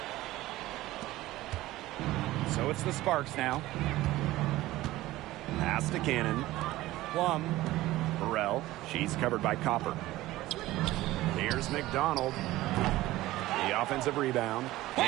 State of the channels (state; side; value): quieter; left; 16.9 dB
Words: So it's the Sparks now. Pass to Cannon. Plum. Burrell. She's covered by Copper. Here's McDonald. The offensive rebound.